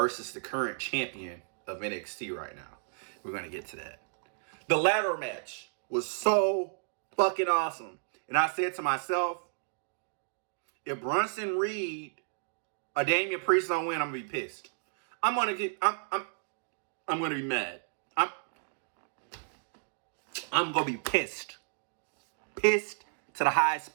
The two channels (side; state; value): left; silent; digital silence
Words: the current champion of NXT right now. We're going to get to that. The ladder match was so fucking awesome. And I said to myself, if Bronson Reed or Damian Priest don't win, I'm going to be pissed. I'm going to be mad. I'm going to be pissed. Pissed to the highest